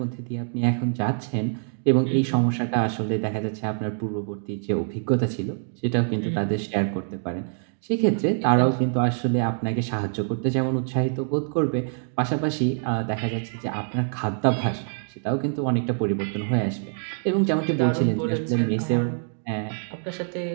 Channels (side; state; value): left; silent; digital silence